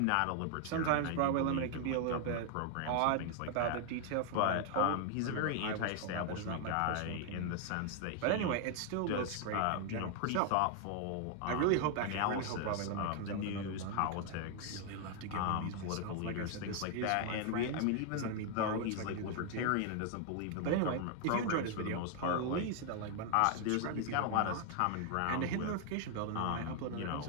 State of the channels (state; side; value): different; both; correlation 0.00